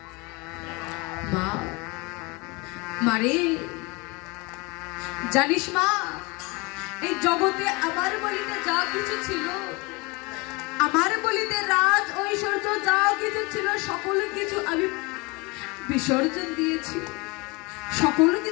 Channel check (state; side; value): quieter; right; 26.6 dB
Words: মা, মারে, জানিস মা, এই জগতে আমার বলিতে যা কিছু ছিল, আমার বলিতে রাজ ঐশ্বর্য যা কিছু ছিল সকল কিছু আমি বিসর্জন দিয়েছি। সকল